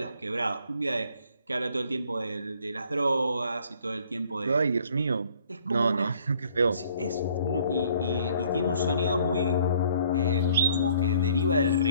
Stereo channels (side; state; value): both; inverted; correlation -0.60